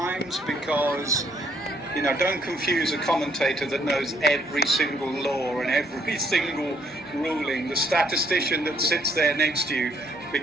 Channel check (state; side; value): normal; both; correlation 0.67